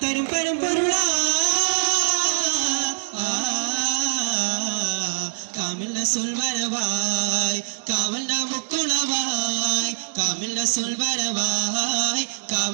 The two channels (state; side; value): silent; left; digital silence